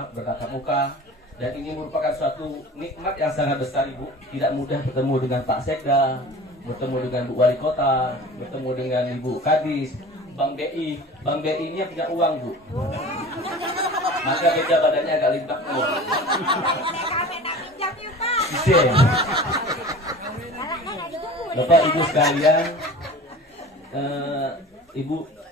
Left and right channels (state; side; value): normal; both; correlation 0.39